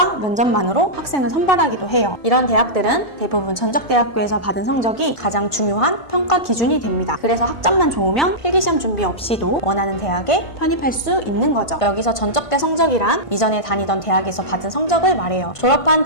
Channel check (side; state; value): right; late; 1.5 ms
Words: 면접만으로 학생을 선발하기도 해요. 이런 대학들은 대부분 전적대학교에서 받은 성적이 가장 중요한 평가 기준이 됩니다. 그래서 학점만 좋으면 필기시험 준비 없이도 원하는 대학에 편입할 수 있는 거죠. 여기서 전적대 성적이란 이전에 다니던 대학에서 받은 성적을 말해요. 졸업한